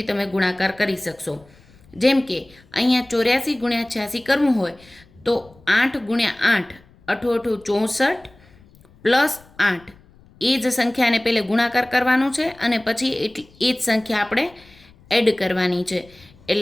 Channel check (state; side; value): noise; left; rumble, 27 dB below the sound